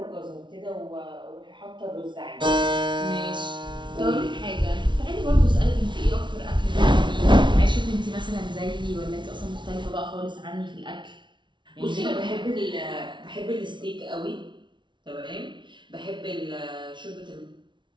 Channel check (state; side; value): late; left; 0.23 ms